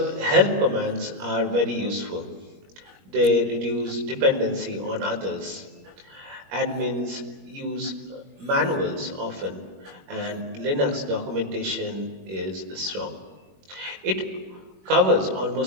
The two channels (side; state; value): left; late; 21 ms